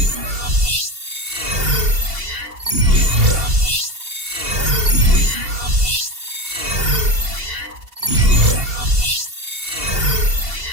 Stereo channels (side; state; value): left; late; 2.7 ms